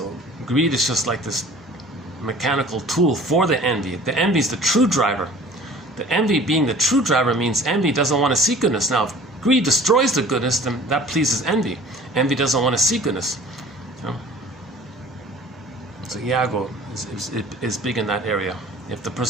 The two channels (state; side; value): normal; both; correlation 0.47